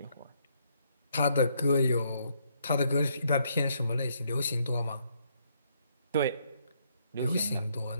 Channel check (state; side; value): inverted; both; correlation -0.72